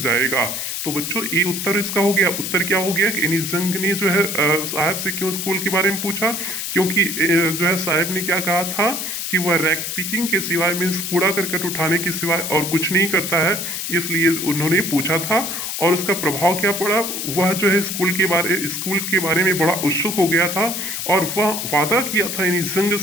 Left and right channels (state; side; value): noise; left; hiss, 4 dB below the sound